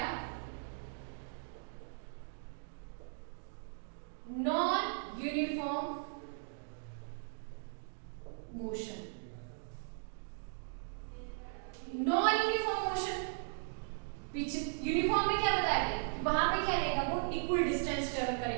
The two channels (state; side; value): silent; left; digital silence